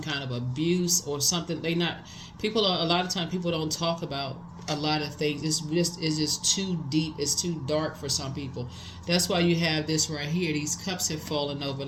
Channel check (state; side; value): identical; both; correlation 1.00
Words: kind of abuse or something, a lot of times people don't talk about a lot of things. It's just too deep, it's too dark for some people. That's why you have this right here. These cups have fallen over,